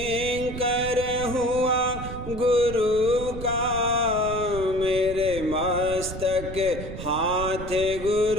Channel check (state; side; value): noise; right; rumble, 9 dB below the sound